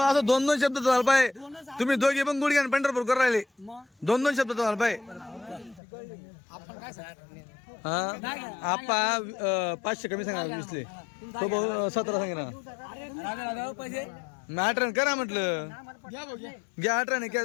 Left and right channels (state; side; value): drops out; right; at 5.8 s